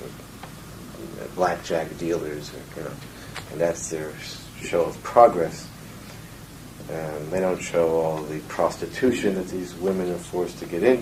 blackjack dealers, or, you know, and that's their show of progress. They don't show all the prostitution that these women are forced to get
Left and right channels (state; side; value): identical; both; correlation 1.00